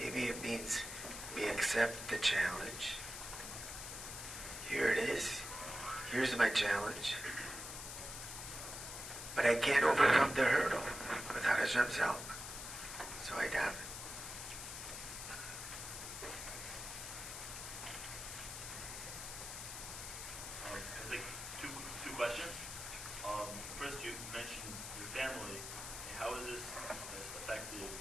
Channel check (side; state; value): left; noise; hiss, 7 dB below the sound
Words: it means we accept the challenge. Here it is. Here's my challenge. But I can't overcome the hurdle without Hashem's help. So I daven. I think two questions. First, you mentioned your family. How is this affected?